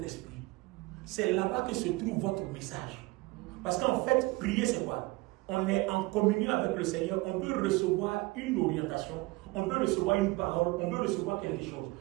esprit. C'est là-bas que se trouve votre message. Parce qu'en fait, prier, c'est quoi? On est en communion avec le Seigneur, on peut recevoir une orientation, on peut recevoir une parole, on peut recevoir quelque chose.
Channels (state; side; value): quieter; left; 22.4 dB